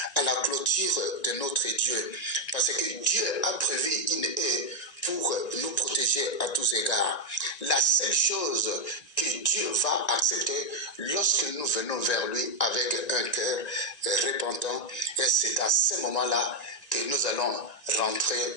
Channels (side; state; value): right; late; 1.9 ms